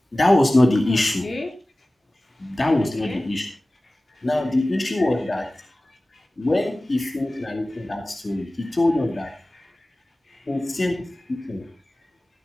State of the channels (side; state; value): both; normal; correlation 0.97